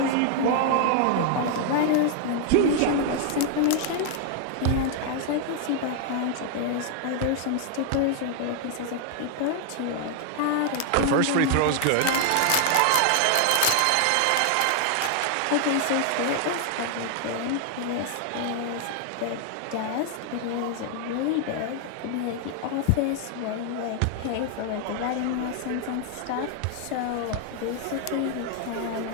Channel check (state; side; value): different; both; correlation 0.00